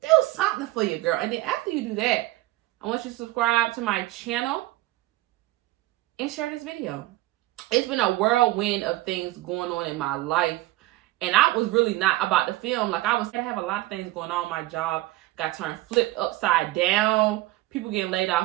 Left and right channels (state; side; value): quieter; left; 17.9 dB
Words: Do something for your girl. And then after you do that, I want you to subscribe to my channel and share this video. It's been a whirlwind of things going on in my life. And I was really not about to film. Like, I have a lot of things going on. My job got turned flipped upside down. People getting laid